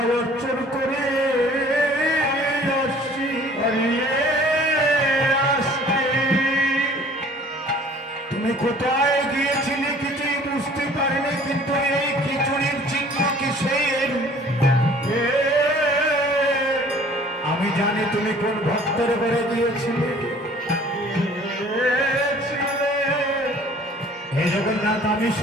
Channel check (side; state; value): both; normal; correlation 0.51